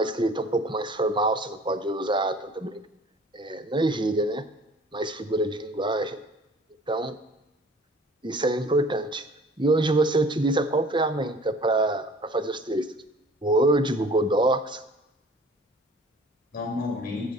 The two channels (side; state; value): both; normal; correlation 0.49